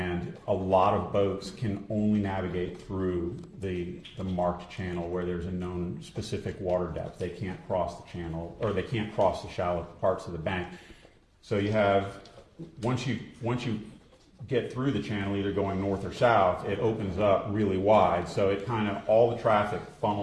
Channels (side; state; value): both; identical; correlation 1.00